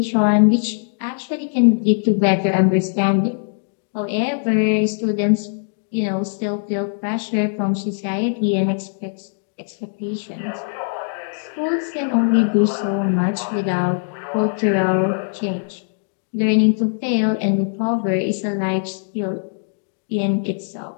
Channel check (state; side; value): silent; right; digital silence